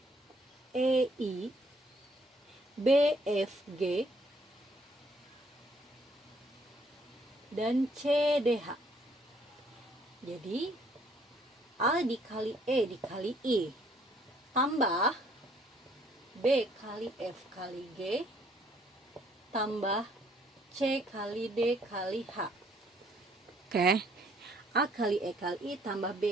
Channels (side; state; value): both; normal; correlation 0.64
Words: E, I, B, F, G, dan C, D, H. Jadi A dikali E dikali I tambah B kali F kali G tambah C kali D kali H. Oke. A kali E kali I tambah